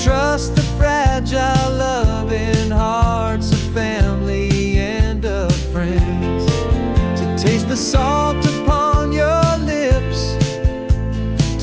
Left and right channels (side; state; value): both; identical; correlation 1.00